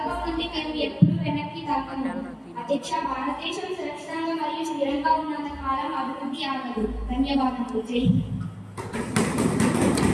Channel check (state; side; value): identical; both; correlation 1.00